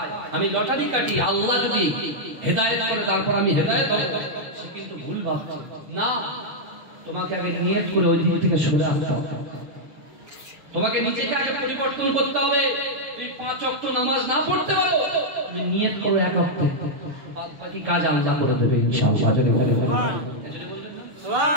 আমি লটারি কাটি, আল্লাহ যদি হেদায়েত করে তারপর আমি হেদায়েত হব, সে কিন্তু ভুল ভাবছে। না, তোমাকে আগে নিয়ত করে ওই দিক থেকে সরে আসতে হবে। তোমাকে নিজেকে আগে পরিবর্তন করতে হবে। তুমি 5 ওয়াক্ত নামাজ না পড়তে পারো, তুমি নিয়ত করো 1 ওয়াক্ত, বাদ বাকি কাজ আল্লাহ করে দেবে ইনশাআল্লাহ। যদি বলেন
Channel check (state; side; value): late; left; 6.5 ms